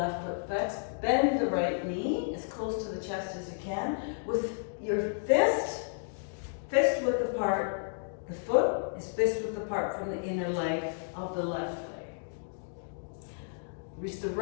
foot flexed. Bend the right knee as close to the chest as you can. With your fist width apart, the foot is fist width apart from the inner leg of the left leg. Reach the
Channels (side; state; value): right; silent; digital silence